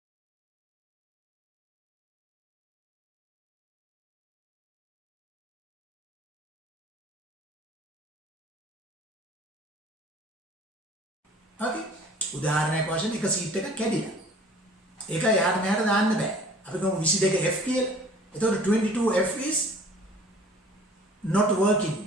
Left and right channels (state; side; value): normal; both; correlation 0.49